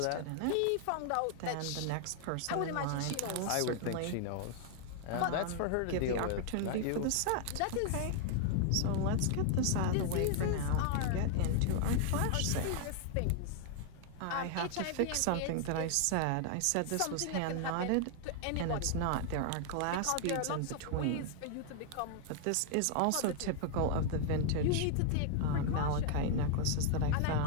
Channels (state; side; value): different; both; correlation 0.00